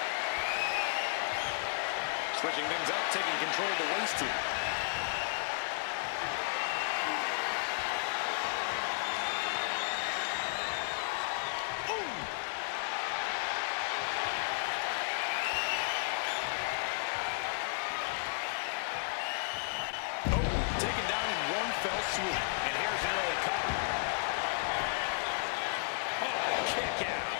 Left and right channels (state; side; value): silent; right; digital silence